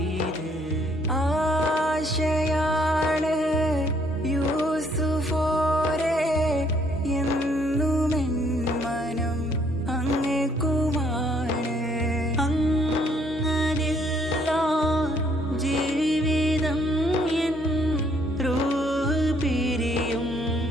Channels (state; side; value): normal; both; correlation 0.66